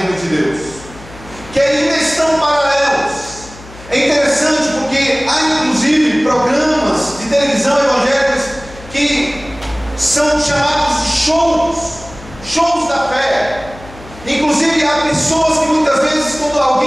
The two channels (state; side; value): noise; left; hum, 19 dB below the sound